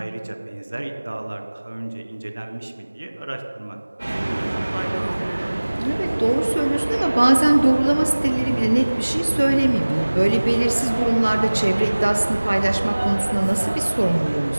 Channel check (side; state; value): both; inverted; correlation -1.00